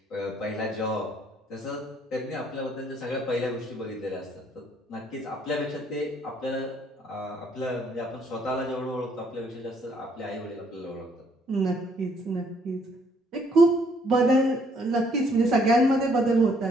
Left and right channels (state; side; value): normal; both; correlation 0.66